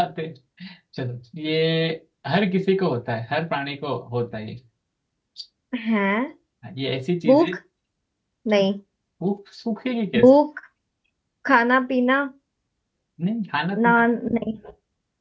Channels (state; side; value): identical; both; correlation 1.00